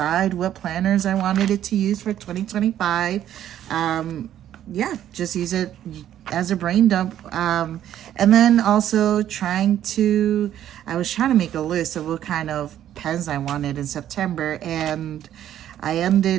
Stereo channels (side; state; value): left; quieter; 11.2 dB